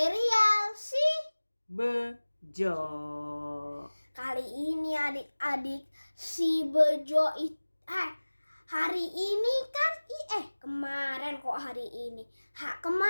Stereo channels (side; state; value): both; inverted; correlation -1.00